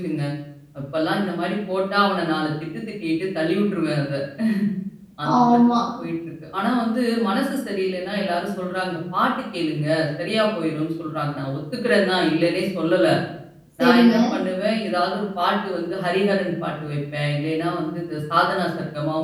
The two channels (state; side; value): identical; both; correlation 1.00